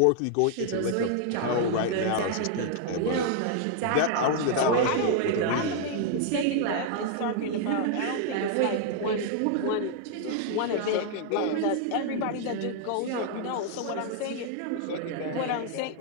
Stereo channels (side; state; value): both; different; correlation 0.00